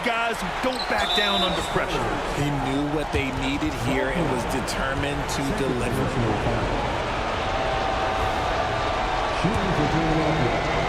guys who don't back down under pressure. He knew what they needed here and was determined to deliver. Shooting for Philadelphia.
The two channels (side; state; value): both; identical; correlation 1.00